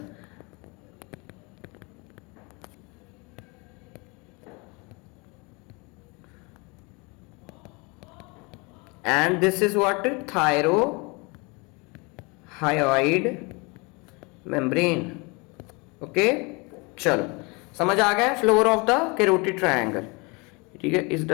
And this is what? Thyroid membrane. Okay, चलो समझ आ गया floor of the carotid triangle. ठीक है, इस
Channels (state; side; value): quieter; right; 28.5 dB